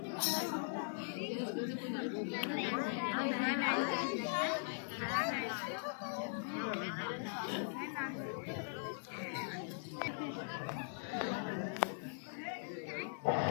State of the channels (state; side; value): silent; right; digital silence